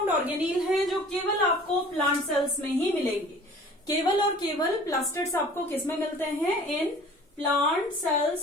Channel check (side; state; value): both; normal; correlation 0.47